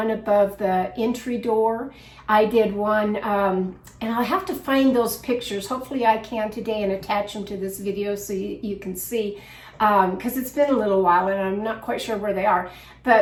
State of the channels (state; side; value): identical; both; correlation 1.00